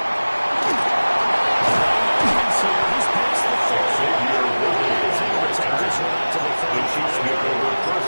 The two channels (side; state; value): both; inverted; correlation -1.00